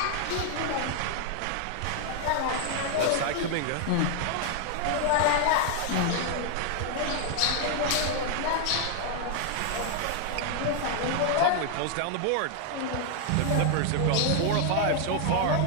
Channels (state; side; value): different; both; correlation 0.00